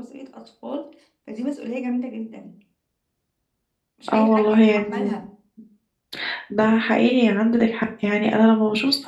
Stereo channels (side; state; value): both; identical; correlation 1.00